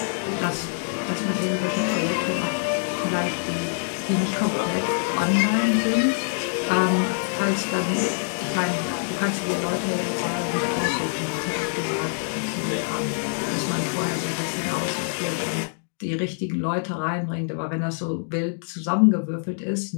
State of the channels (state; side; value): silent; right; digital silence